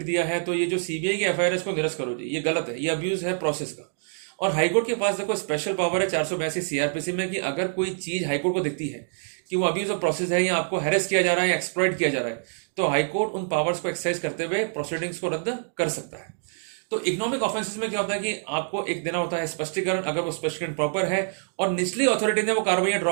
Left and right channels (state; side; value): silent; left; digital silence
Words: दिया है, तो ये जो सीबीआई की एफआईआर है इसको निरस्त करो जी, ये गलत है, ये अब्यूज है प्रोसेस का। और हाईकोर्ट के पास देखो स्पेशल पावर है 482 सीआरपीसी में कि अगर कोई चीज हाईकोर्ट को दिखती है कि वो अब्यूज ऑफ प्रोसेस है या आपको हैरेस किया जा रहा है या एक्सप्लॉइट किया जा रहा है, तो हाईकोर्ट उन पावर्स को एक्सरसाइज करते हुए प्रोसीडिंग्स को रद्द कर सकता है। तो इकोनॉमिक ऑफेंसेस में क्या होता है कि आपको एक देना होता है स्पष्टीकरण, अगर वो स्पष्टीकरण प्रॉपर है और निचली अथॉरिटी ने वो कार्रवाई